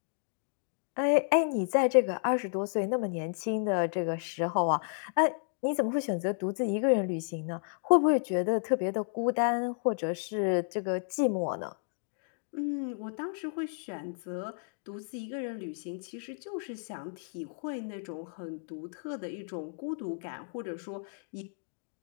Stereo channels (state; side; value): silent; right; digital silence